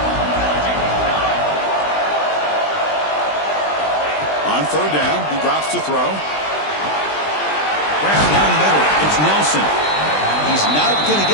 On 3rd down, he drops to throw. Grab down the middle. It's Nelson. He's not going to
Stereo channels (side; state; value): right; late; 20 ms